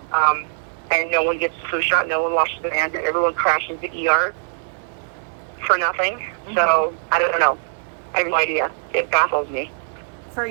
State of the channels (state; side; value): silent; left; digital silence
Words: And no one gets the flu shot, no one washes their hands, and everyone crashes the ER for nothing. Mm-hmm. So, I don't know. I have no idea. It baffles me. For